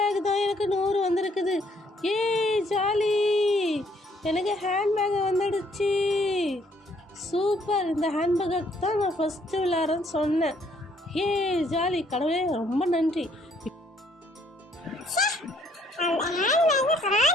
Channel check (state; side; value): normal; both; correlation 0.66